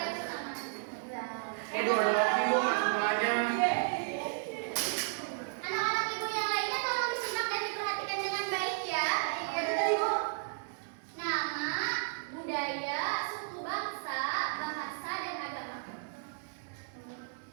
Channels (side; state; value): left; silent; 55 dB below the other